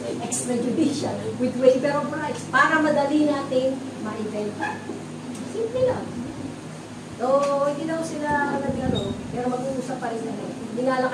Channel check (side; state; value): both; identical; correlation 1.00